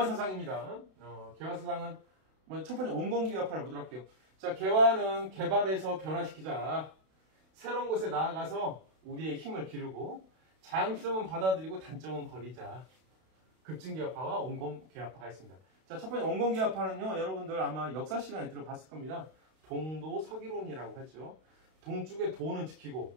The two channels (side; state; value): left; late; 32 ms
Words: 개화사상은 첫 번째 온건계합파를 보도록 할게요. 자, 개화는 개발해서 변화시키자. 새로운 곳에 나아가서 우리의 힘을 기르고 장점은 받아들이고 단점은 버리자. 급진계합파와 온건계합파가 있습니다. 자, 첫 번째 온건계합파는요, 여러분들 아마 역사 시간에 들어봤을 겁니다. 동도 서기론이라고 하죠. 동쪽의 도는 지키고